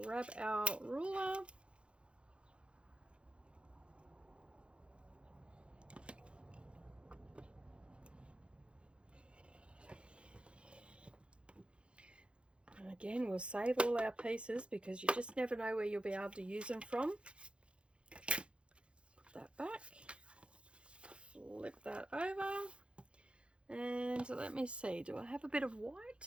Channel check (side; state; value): left; late; 0.058 ms